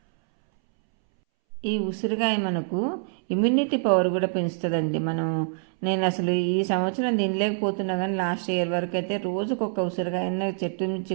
ఈ ఉసిరికాయ మనకు ఇమ్యూనిటీ పవర్ కూడా పెంచుతుందండి. నేను అసలు ఈ సంవత్సరం తినలేకపోతున్నా, కానీ లాస్ట్ ఇయర్ వరకు అయితే రోజుకొక ఉసిరికాయ చెట్టు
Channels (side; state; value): left; silent; 61 dB below the other